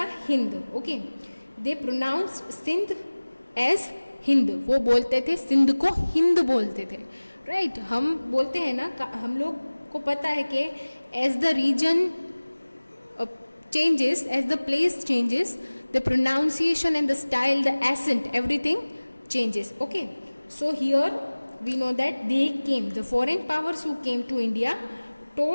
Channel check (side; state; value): both; inverted; correlation -1.00